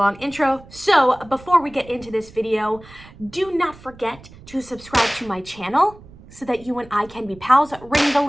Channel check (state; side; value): noise; right; rumble, 21 dB below the sound